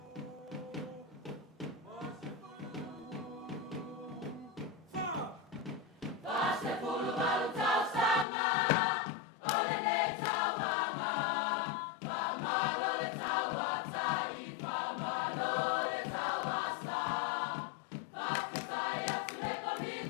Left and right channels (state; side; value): drops out; right; at 8.2 s